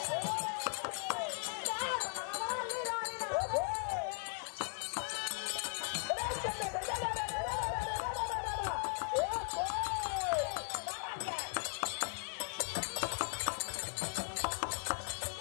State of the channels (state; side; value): silent; right; digital silence